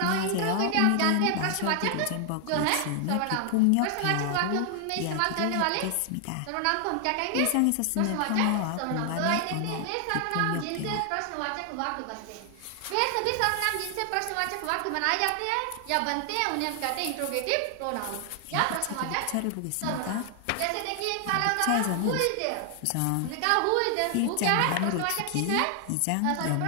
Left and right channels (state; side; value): different; both; correlation 0.00